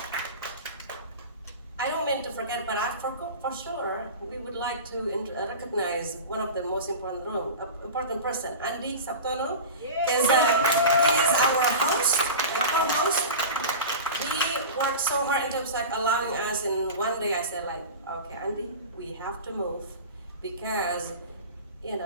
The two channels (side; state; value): both; inverted; correlation -0.31